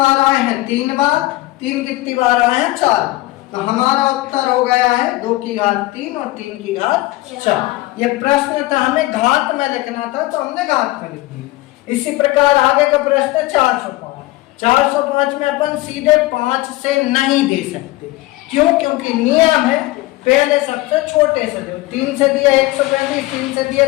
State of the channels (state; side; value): quieter; right; 18.9 dB